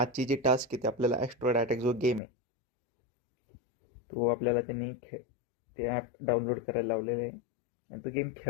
जी टास्क आहे ती आपल्याला ॲस्ट्रॉइड अटॅक जो गेम आहे तो आपल्याला त्यांनी ते ॲप डाउनलोड करायला लावलेलं आहे आणि तो गेम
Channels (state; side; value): drops out; right; at 2.2 s